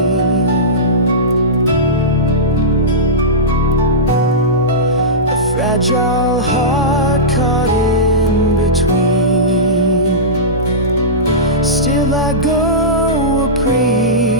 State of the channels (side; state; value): both; normal; correlation -0.16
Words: fragile heart caught in between. Still I go a